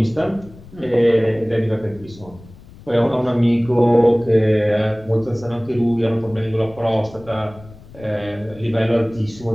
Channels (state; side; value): noise; left; rumble, 21 dB below the sound